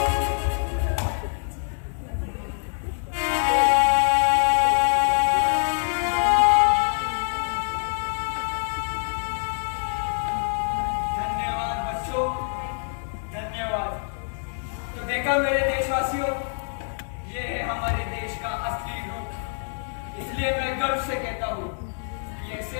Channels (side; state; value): right; silent; digital silence